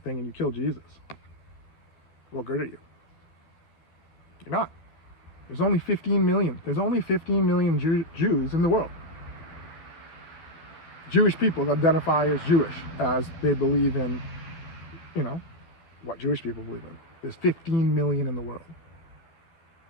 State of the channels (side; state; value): right; late; 12 ms